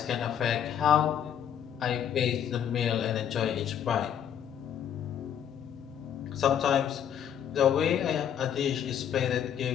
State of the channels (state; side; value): quieter; right; 9.2 dB